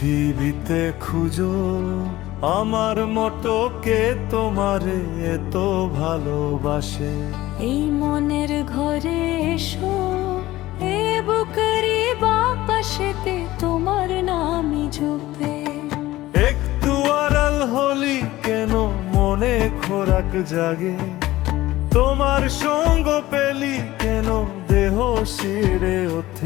খুঁজো আমার মতো কে তোমারে এত ভালোবাসে। এই মনের ঘরে এসো, এ বুকেরই বাপাশেতে তোমার নামই জপে। একটু আড়াল হলি কেন মনে খোরাক জাগে, তোমার সঙ্গ পেলি কেন দেহ শিরে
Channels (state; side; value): quieter; right; 16.7 dB